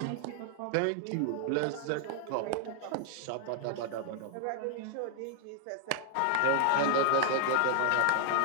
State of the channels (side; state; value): both; different; correlation -0.01